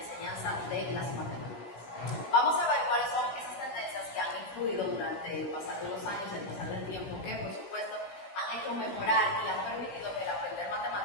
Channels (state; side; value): late; right; 16 ms